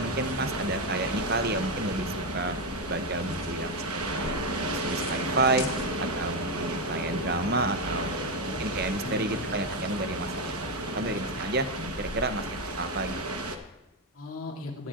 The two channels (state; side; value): normal; both; correlation 0.07